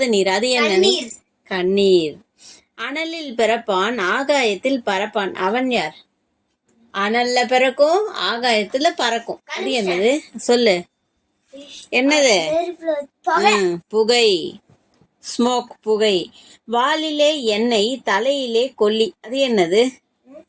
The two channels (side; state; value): both; identical; correlation 1.00